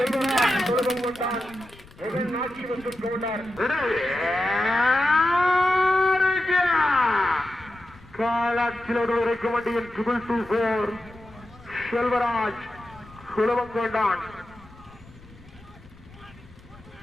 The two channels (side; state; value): left; noise; rumble, 22 dB below the sound